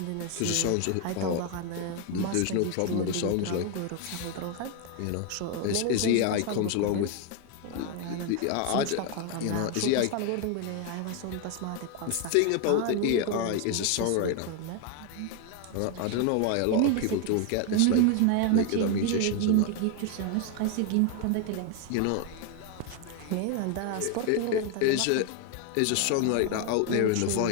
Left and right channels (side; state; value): both; different; correlation 0.01